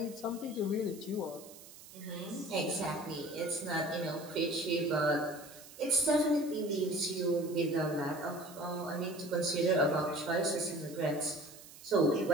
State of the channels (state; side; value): noise; right; hiss, 18 dB below the sound